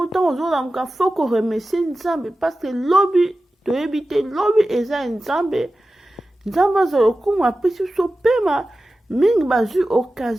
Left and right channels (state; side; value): normal; both; correlation 0.94